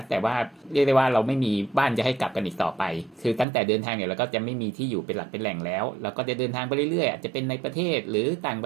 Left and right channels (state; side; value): drops out; left; at 3.5 s